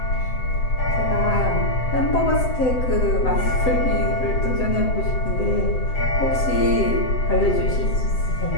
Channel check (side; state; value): right; late; 7.8 ms